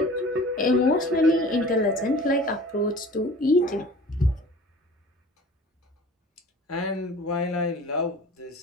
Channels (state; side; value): normal; both; correlation 0.44